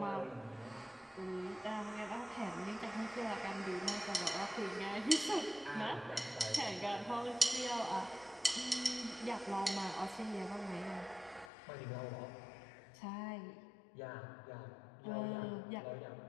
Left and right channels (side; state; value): right; drops out; at 11.5 s